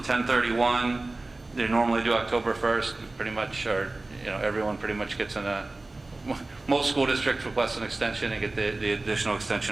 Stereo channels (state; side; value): quieter; left; 3.0 dB